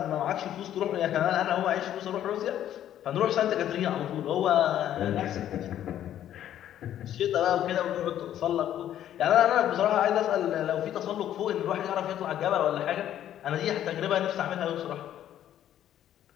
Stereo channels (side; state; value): right; quieter; 11.3 dB